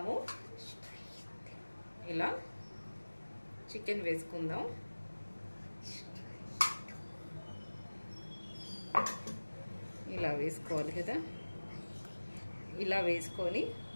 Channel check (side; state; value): both; inverted; correlation -1.00